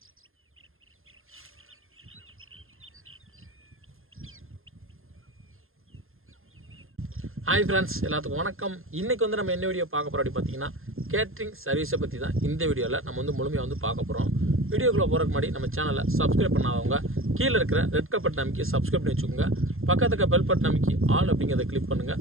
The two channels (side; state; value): left; late; 0.60 ms